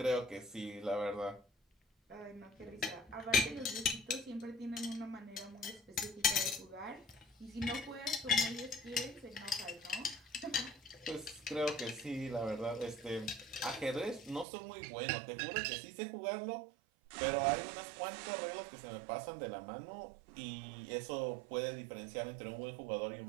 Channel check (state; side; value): drops out; left; at 14.5 s